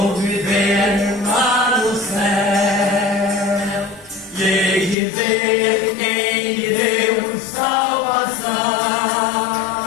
viver lá no céu, e hei de ver quem me deu salvação.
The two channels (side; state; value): right; drops out; at 5.0 s